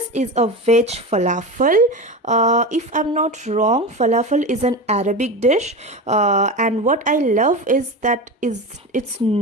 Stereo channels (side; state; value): both; normal; correlation 0.24